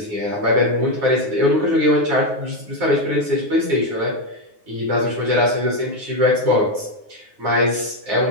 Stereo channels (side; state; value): left; late; 9.6 ms